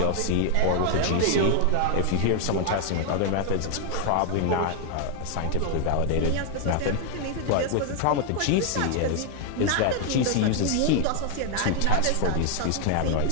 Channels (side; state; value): both; different; correlation 0.00